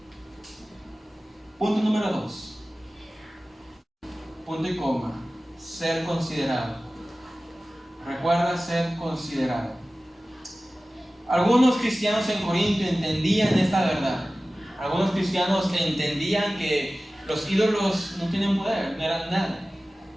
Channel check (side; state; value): both; normal; correlation 0.96